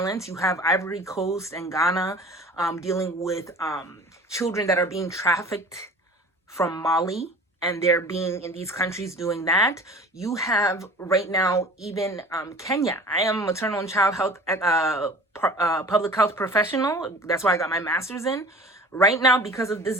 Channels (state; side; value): normal; both; correlation 0.43